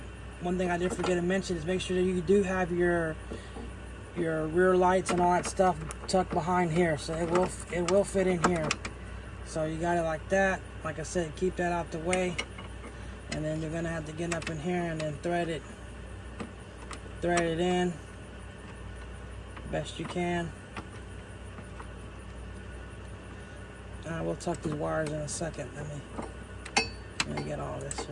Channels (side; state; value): both; identical; correlation 1.00